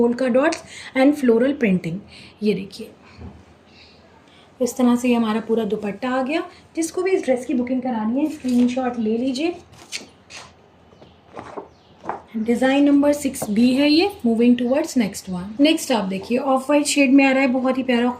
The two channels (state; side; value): identical; both; correlation 1.00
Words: dots and floral printing. ये देखिए इस तरह से ये हमारा पूरा दुपट्टा आ गया। जिसको भी इस ड्रेस की बुकिंग करानी है स्क्रीनशॉट ले लीजिए। डिज़ाइन नंबर 6B है ये। Moving towards next one. Next आप देखिए ऑफ वाइट शेड में आ रहा है, बहुत ही प्यारा